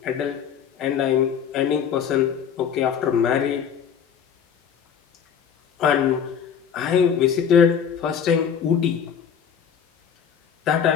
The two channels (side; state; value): right; quieter; 7.8 dB